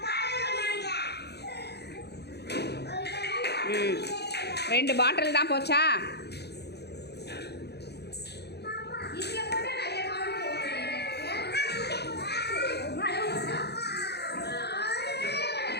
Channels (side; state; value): right; late; 0.48 ms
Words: ம் 2 பாட்டில் தான் போச்சா